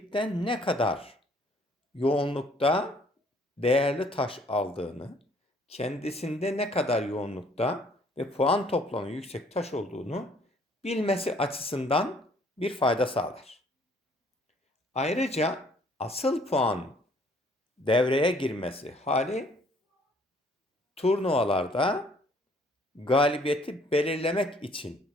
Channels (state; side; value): normal; both; correlation 0.60